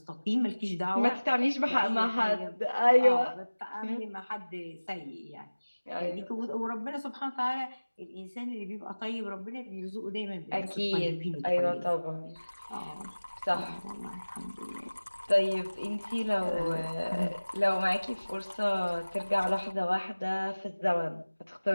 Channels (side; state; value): both; inverted; correlation -1.00